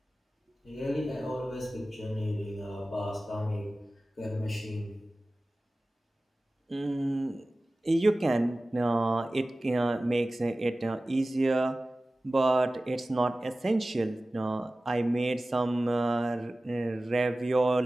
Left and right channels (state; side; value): normal; both; correlation 0.97